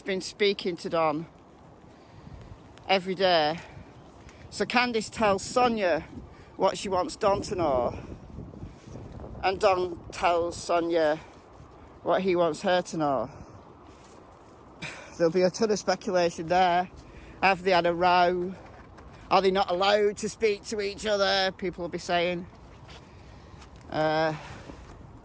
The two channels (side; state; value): both; identical; correlation 1.00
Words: been speaking to Don every day. So Candus tells Sonia what she wants Don to know, and Don tells Sonia what he wants her to know. There'll be a ton of speculation there. Have they had a row? Are they not allowed to speak to each other? People will be saying. Well,